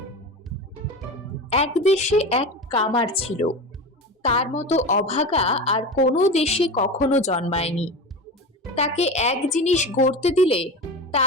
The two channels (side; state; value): both; normal; correlation 0.27